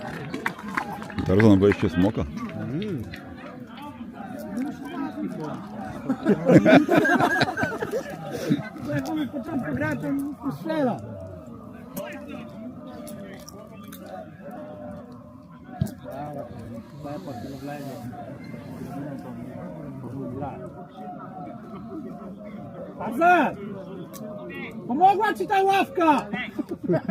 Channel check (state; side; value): identical; both; correlation 1.00